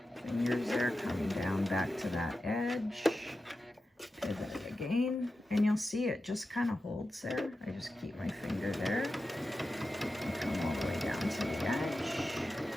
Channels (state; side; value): normal; both; correlation 0.92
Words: fingers there coming down back to that edge, pivot it again, and you'll see it just kind of holds there. I just keep my finger there and come all the way down to the edge.